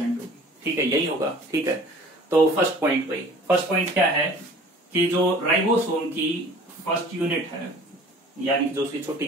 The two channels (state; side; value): normal; both; correlation 0.47